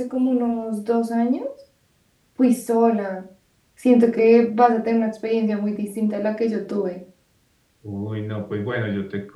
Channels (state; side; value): identical; both; correlation 1.00